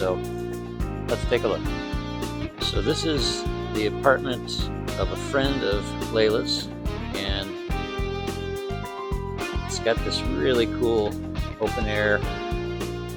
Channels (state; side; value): identical; both; correlation 1.00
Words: let's take a look. So this is the apartment of a friend of Layla's, and it's got this really cool open air